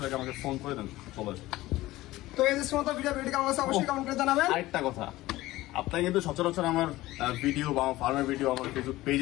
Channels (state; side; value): quieter; right; 17.5 dB